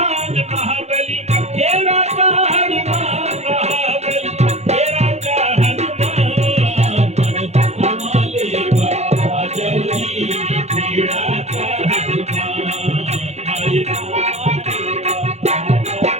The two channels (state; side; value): late; left; 0.32 ms